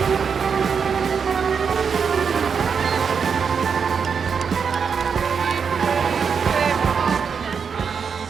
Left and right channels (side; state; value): left; quieter; 6.3 dB